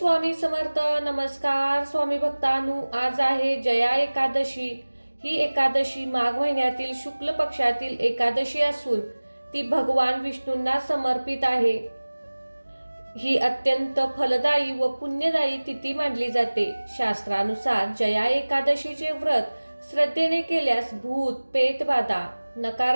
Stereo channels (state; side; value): inverted; both; correlation -1.00